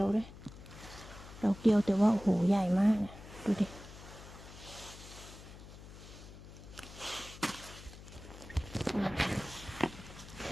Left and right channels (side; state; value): left; noise; hum, 16 dB below the sound